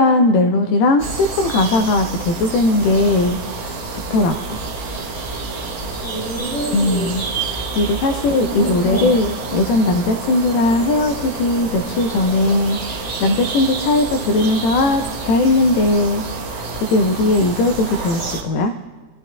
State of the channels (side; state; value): right; late; 17 ms